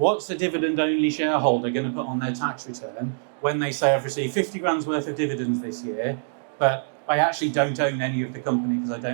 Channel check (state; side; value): silent; left; digital silence